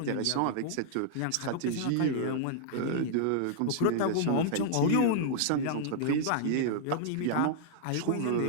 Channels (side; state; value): both; different; correlation -0.01